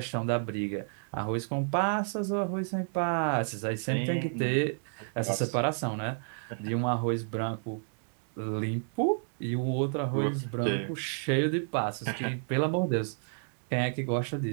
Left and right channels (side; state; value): left; silent; digital silence